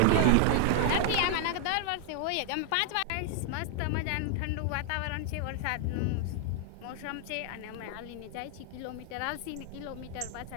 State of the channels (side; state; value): both; different; correlation 0.00